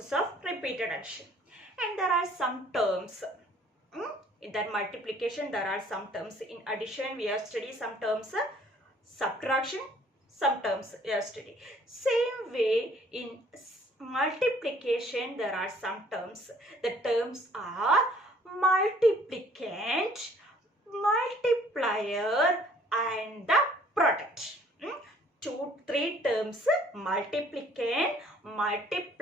of repeated addition. And there are some terms. In that multiplication, there are some terms. In addition, we have studied some terms. Subtraction, some terms we have studied. Same way in multiplication there are some terms. The terms are multiplicand, multiplier and the product. Three terms: multiplicand,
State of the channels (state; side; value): normal; both; correlation 0.58